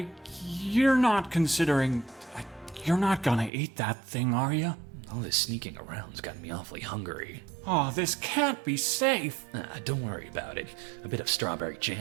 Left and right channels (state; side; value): drops out; left; at 3.5 s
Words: you're not considering... You're not gonna eat that thing, are you? All this sneaking around's got me awfully hungry. Oh, this can't be safe. Don't worry about it. A bit of strawberry